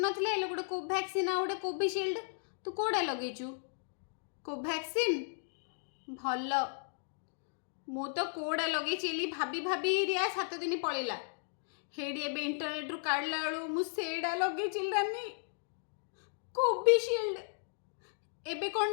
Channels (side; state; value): right; silent; digital silence